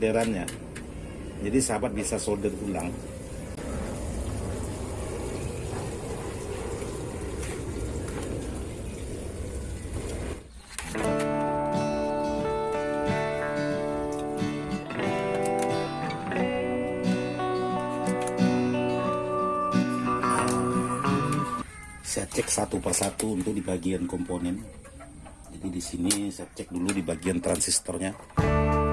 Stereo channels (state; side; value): identical; both; correlation 1.00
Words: Jadi sahabat bisa solder ulang. Saya cek satu persatu untuk di bagian komponen. Jadi di sini saya cek dulu di bagian transistornya.